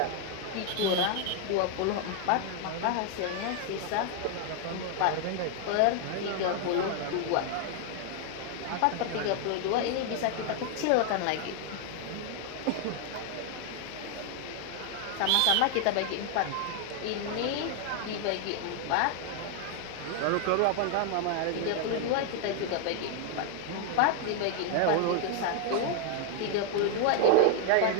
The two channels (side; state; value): both; different; correlation 0.00